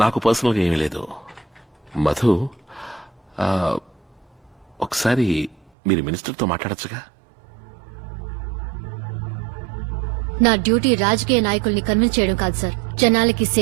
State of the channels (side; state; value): left; drops out; at 5.7 s